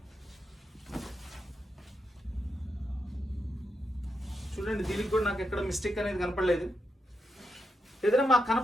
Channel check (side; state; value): both; normal; correlation 0.85